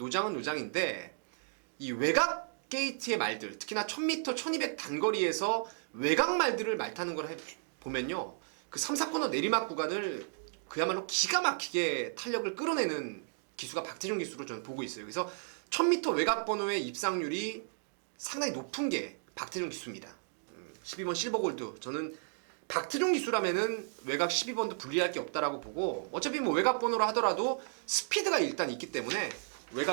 이 외곽 게이트의 말들, 특히나 1000m, 1200 단거리에서 외곽 말들을 말 타는 걸 보면요, 그 3, 4코너 내리막 구간을 그야말로 기가 막히게 탄력을 끌어내는 기수가 박태종 기수로 저는 보고 있어요. 그래서 1000m 외곽 번호의 입상률이 상당히 높은 게 박태종 기수입니다. 12번 실버골드, 저는 박태종 기수라면은 외곽 12번도 불리할 게 없다라고 보고, 어차피 뭐 외곽 번호로 하더라도 스피드가 일단 있기 때문에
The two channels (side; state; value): left; silent; digital silence